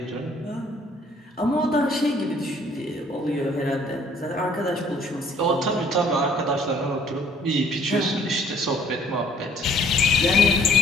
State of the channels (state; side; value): normal; both; correlation 0.58